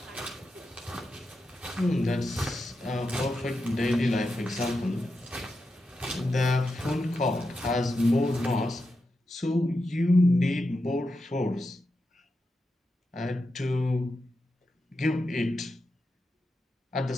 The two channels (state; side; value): normal; both; correlation 0.88